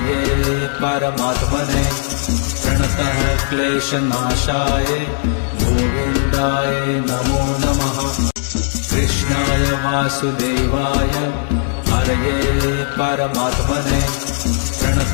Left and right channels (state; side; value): silent; right; digital silence